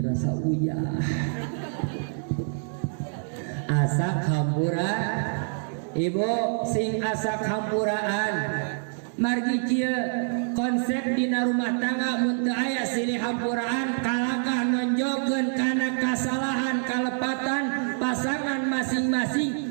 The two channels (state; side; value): silent; left; digital silence